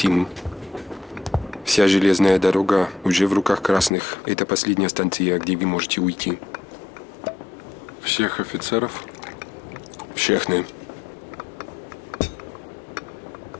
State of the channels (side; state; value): right; drops out; at 3.9 s